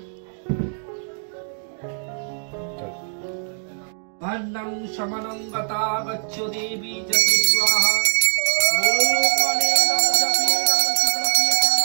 अन्नं शमनं गता गच्छ देवी जति स्वाहा ॐ अनेनं जपेनं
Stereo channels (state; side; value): silent; left; 64 dB below the other